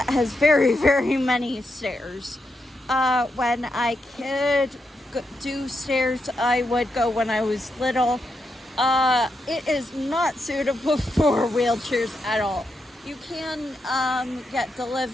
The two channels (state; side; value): normal; both; correlation 0.84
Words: has very, very many stairs. When I could do stairs, I would go when I was little. It is not suitable for wheelchairs at all. You can get